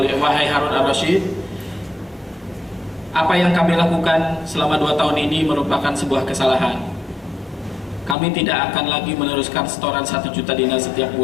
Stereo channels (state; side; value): drops out; right; at 8.2 s